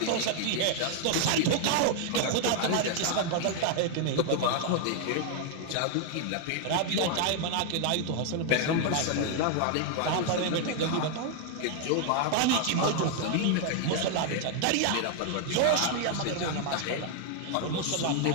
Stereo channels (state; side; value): different; both; correlation 0.00